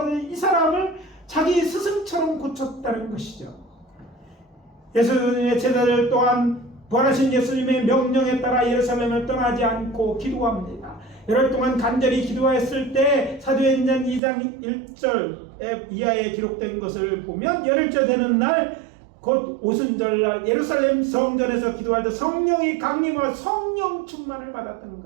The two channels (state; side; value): drops out; left; at 14.2 s